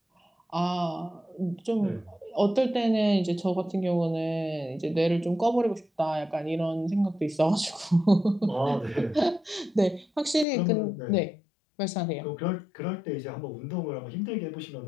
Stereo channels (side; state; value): right; drops out; at 10.5 s